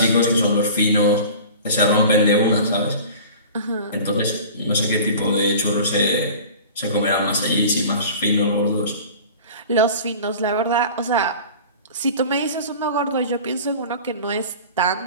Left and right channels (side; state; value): both; inverted; correlation -0.39